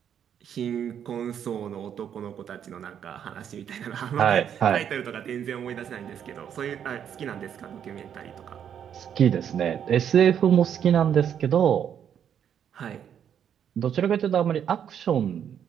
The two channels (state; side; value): quieter; left; 8.9 dB